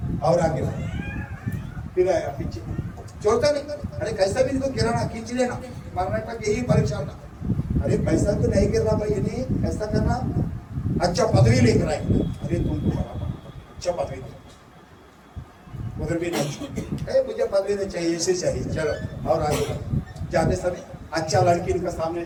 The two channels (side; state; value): both; identical; correlation 1.00